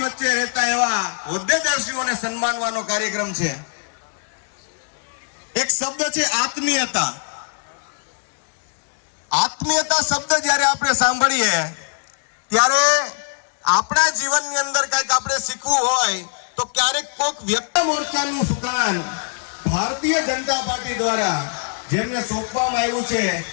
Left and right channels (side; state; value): right; silent; digital silence